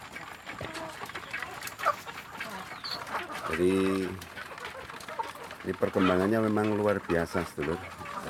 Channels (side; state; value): both; identical; correlation 1.00